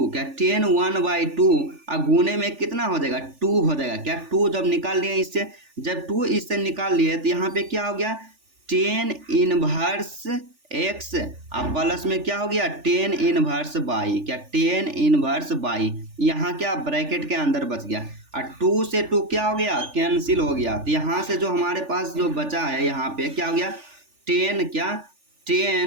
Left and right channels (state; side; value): late; left; 3.4 ms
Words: क्या 10 1 बाई टू, और गुने में कितना हो जाएगा, 2 हो जाएगा। क्या 2 जब निकाल लिए इससे, जब 2 इससे निकाल लिए तो यहाँ पे क्या हो गया, 10 इनवर्स एक्स, अब प्लस में क्या हो गया, 10 इनवर्स बाई, क्या 10 इनवर्स बाई, यहाँ क्या ब्रैकेट के अंदर बच गया, और 2 से 2 क्या हो गया, कैंसिल हो गया। तो यहाँ से जो हमारे पास जो बचा है यहाँ पे क्या हो गया, 10, क्या